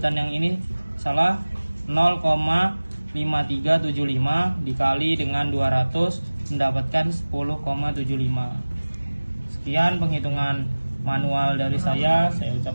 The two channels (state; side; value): inverted; both; correlation -1.00